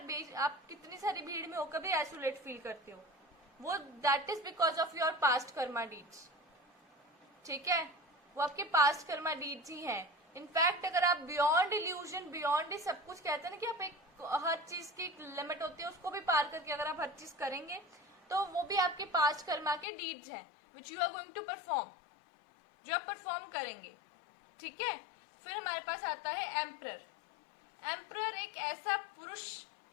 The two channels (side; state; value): right; drops out; at 19.9 s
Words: आप कितनी सारी भीड़ में होकर भी आइसोलेट फील करते हो, वो that is because of your past Karma deeds, ठीक है। वो आपके पास्ट कर्मा डीड्स ही हैं। इनफैक्ट अगर आप बियॉन्ड इल्यूजन, बियॉन्ड ही सब कुछ कहते हैं ना कि आप एक हर चीज की एक लिमिट होती है, उसको भी पार करके अगर आप हर चीज करेंगे तो वो भी आपके पास्ट कर्मा के डीड्स हैं, which you are going to perform, जो आप परफॉर्म करेंगे, ठीक है। फिर हमारे पास आता है एम्परर। एम्परर एक ऐसा पुरुष,